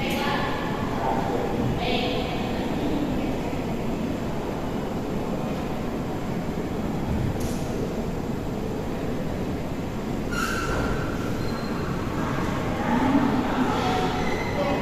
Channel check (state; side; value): identical; both; correlation 1.00